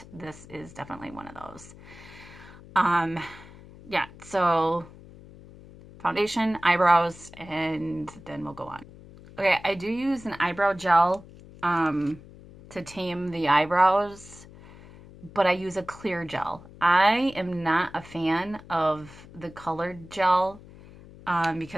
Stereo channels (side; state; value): left; noise; hum, 20 dB below the sound